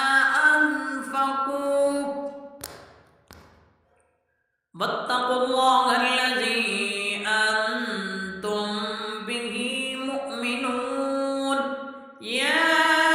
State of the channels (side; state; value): both; identical; correlation 1.00